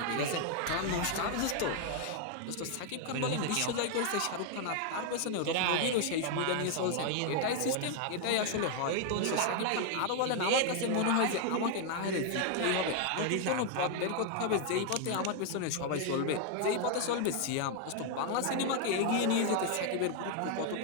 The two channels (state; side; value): different; both; correlation 0.00